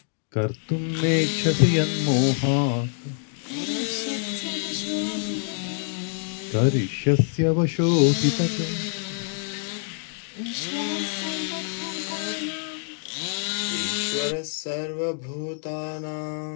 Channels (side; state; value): right; silent; 61 dB below the other